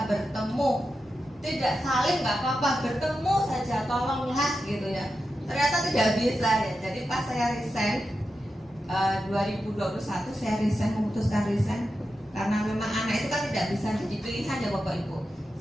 bertemu. Tidak saling nggak apa-apa, bertemu saja tolonglah gitu ya. Ternyata tidak bisa ya. Jadi pas saya resign 2021 saya memutuskan resign karena memang anak itu kan tidak bisa jadi pilihan ya Bapak Ibu.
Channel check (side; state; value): both; normal; correlation 0.90